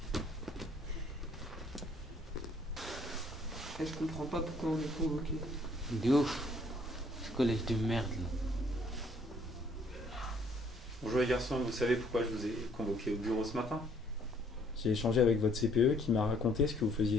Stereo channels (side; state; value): both; normal; correlation 0.63